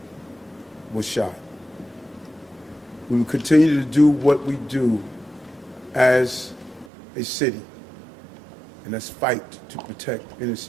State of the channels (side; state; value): left; drops out; at 6.9 s